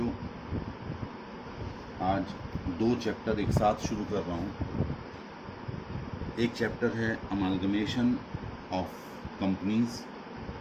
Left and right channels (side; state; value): both; identical; correlation 1.00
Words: आज दो चैप्टर एक साथ शुरू कर रहा हूँ। एक चैप्टर है अमालगमेशन ऑफ कंपनीज,